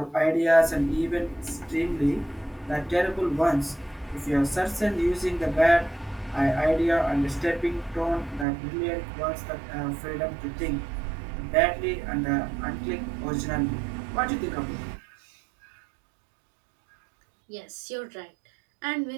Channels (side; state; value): left; drops out; at 8.5 s